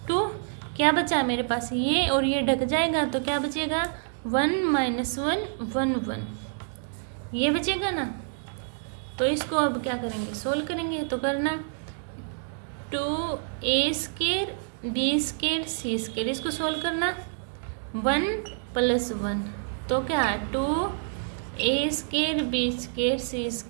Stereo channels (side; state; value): left; silent; digital silence